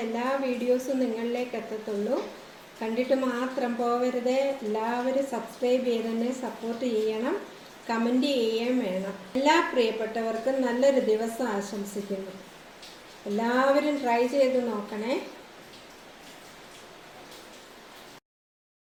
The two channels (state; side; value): identical; both; correlation 1.00